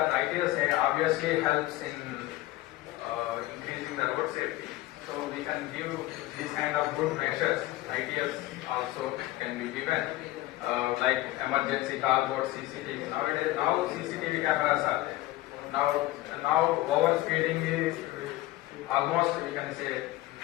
ITS obviously helps in increasing the road safety. So we can give these kind of good measures. ITS also can be given, like emergency call board, CCTV. Nowadays, now CCTV cameras are there. Now overspeeding is almost, we can say,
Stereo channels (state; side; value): quieter; right; 17.0 dB